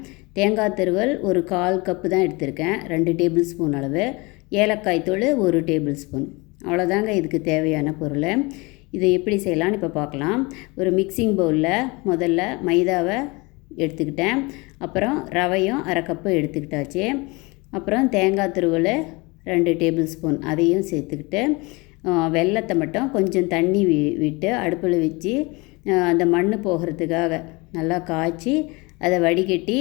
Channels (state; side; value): quieter; right; 25.8 dB